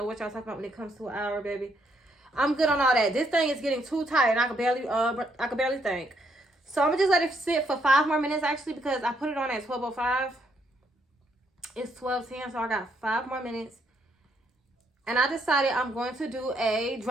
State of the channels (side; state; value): both; normal; correlation 0.73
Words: what y'all talking about when it comes to an hour, baby. I'm good on all that. This thing is getting too tight and I can barely think. So I'm gonna just let it sit for 5 more minutes actually because I put it on at 12:05. It's 12:10, so I got 5 more minutes. And I decided I'm going to do a